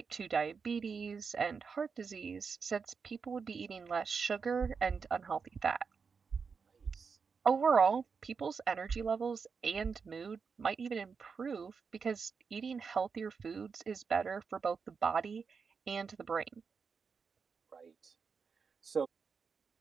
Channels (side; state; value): left; quieter; 5.5 dB